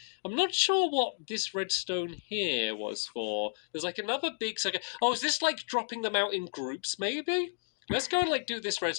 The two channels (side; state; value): right; silent; digital silence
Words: I'm not sure what this redstone here was for. There's like another big second. Oh, is this like dropping them out in groups maybe? Let's go and like do this